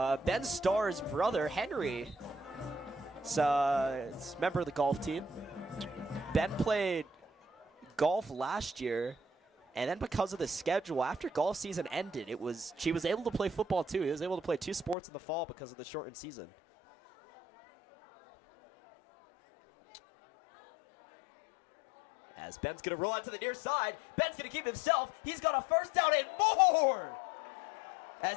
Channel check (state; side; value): drops out; right; at 15.0 s